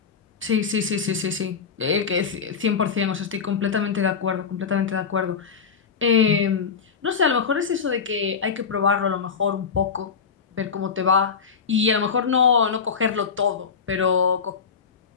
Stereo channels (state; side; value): quieter; right; 6.0 dB